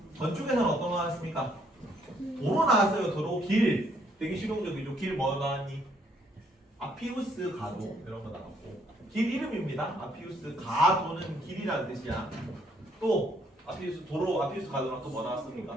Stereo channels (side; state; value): both; normal; correlation 0.68